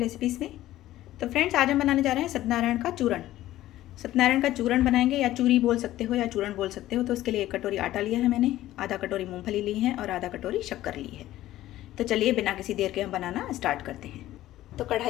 में। तो फ्रेंड्स, आज हम बनाने जा रहे हैं सत्यनारायण का चूरण। सत्यनारायण का चूरण बनाएंगे, या चूरी बोल सकते हो या चूरण बोल सकते हो। तो उसके लिए 1 कटोरी आटा लिया है मैंने, आधा कटोरी मूंगफली ली है और आधा कटोरी शक्कर ली है। तो चलिए बिना किसी देर के हम बनाना स्टार्ट करते हैं। तो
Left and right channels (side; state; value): right; quieter; 14.7 dB